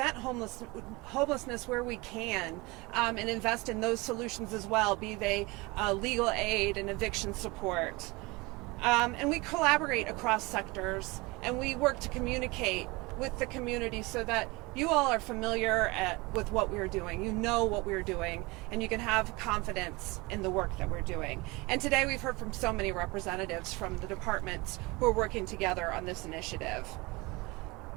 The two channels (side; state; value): left; quieter; 24.3 dB